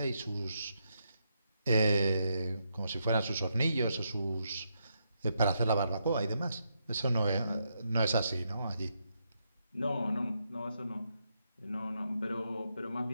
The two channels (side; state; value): both; inverted; correlation -0.80